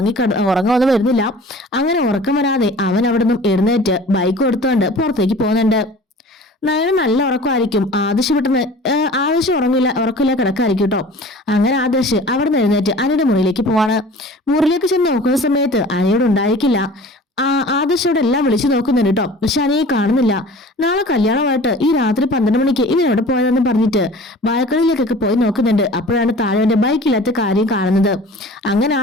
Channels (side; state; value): both; normal; correlation 0.43